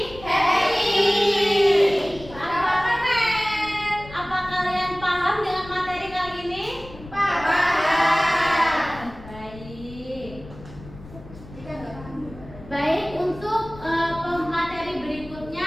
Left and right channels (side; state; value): left; noise; rumble, 17 dB below the sound